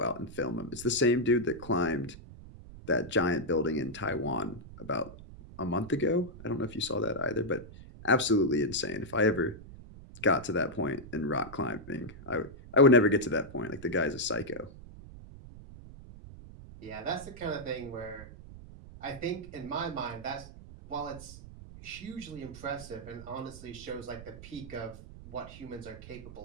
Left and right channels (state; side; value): noise; right; rumble, 16 dB below the sound